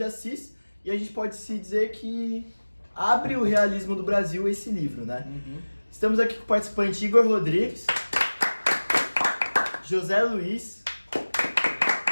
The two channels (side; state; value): both; inverted; correlation -1.00